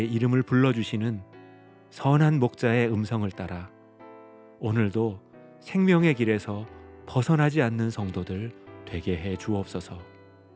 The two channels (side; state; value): both; identical; correlation 1.00